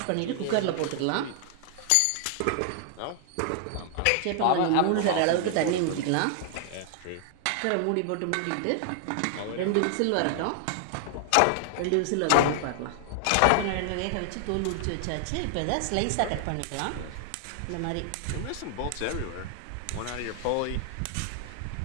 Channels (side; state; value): both; different; correlation 0.00